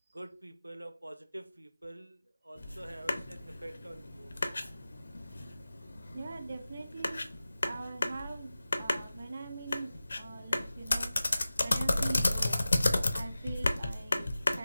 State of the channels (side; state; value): both; inverted; correlation -0.95